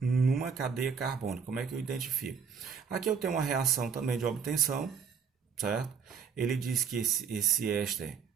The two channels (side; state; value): left; quieter; 6.4 dB